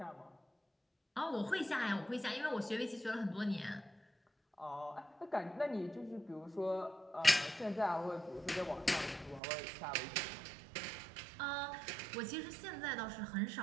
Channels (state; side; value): drops out; left; at 9.4 s